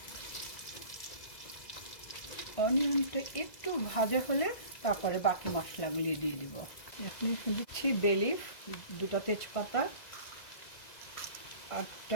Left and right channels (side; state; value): right; late; 2.0 ms